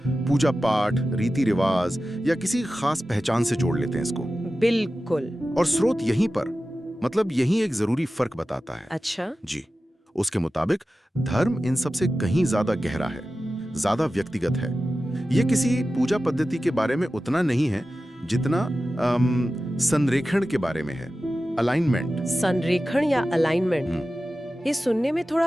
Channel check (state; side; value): normal; both; correlation 0.94